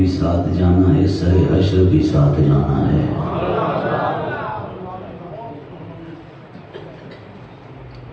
ساتھ جانا ہے، سر حشر بھی ساتھ جانا ہے۔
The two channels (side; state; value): both; identical; correlation 1.00